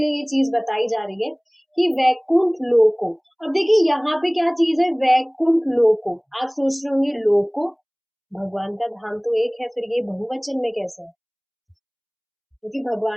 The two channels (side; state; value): both; identical; correlation 1.00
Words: ये चीज बताई जा रही है कि वैकुंठ लोको। अब देखिए यहाँ पे क्या चीज है, वैकुंठ लोको। आप सोच रहे होंगे लोको, भगवान का धाम तो एक है, फिर ये बहुवचन में कैसे है? क्योंकि